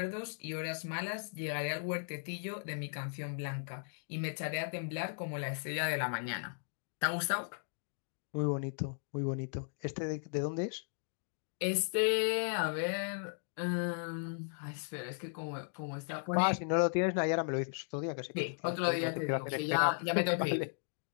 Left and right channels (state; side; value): silent; right; digital silence